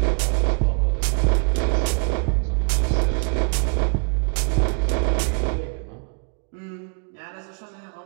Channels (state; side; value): quieter; left; 38.0 dB